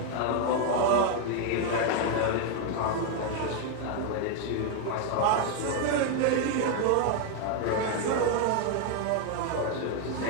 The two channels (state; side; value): different; both; correlation 0.01